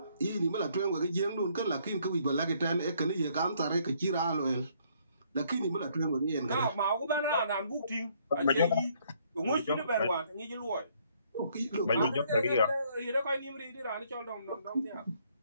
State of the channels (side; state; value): both; inverted; correlation -0.67